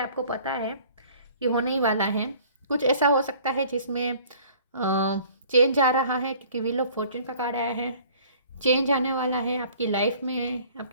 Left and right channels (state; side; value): inverted; both; correlation -0.52